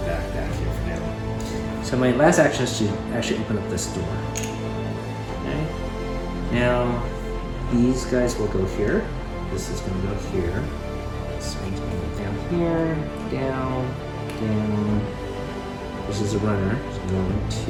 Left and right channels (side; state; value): both; identical; correlation 1.00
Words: back here for now. So my last action is to actually open up this door. Okay. Now, these guys will go here. This is going to go here. So it's going to go down here, down, down. This is a runner. So 1,